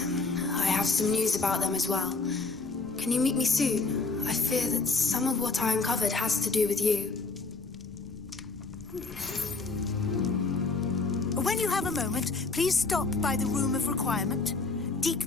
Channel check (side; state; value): right; quieter; 4.0 dB